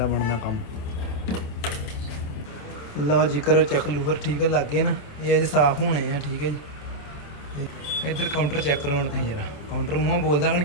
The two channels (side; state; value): right; late; 27 ms